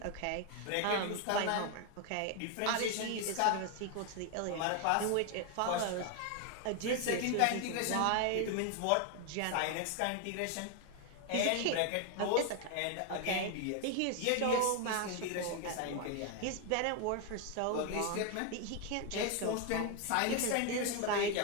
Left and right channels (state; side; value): different; both; correlation 0.01